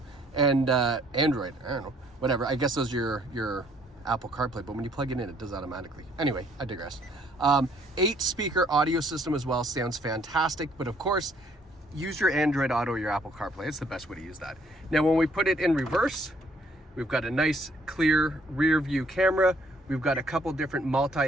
And Android, I don't know. Whatever, I guess those are your Apple CarPlay, but when you plug it in, it does automatically. Anyway, I digress. 8-speaker audio system as well, sounds fantastic, but of course, use your Android Auto or your Apple CarPlay. It's the best way to use that. Now, when we put it in reverse, we've got a nice, clear rear view camera. We've got a couple different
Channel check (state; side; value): normal; both; correlation 0.64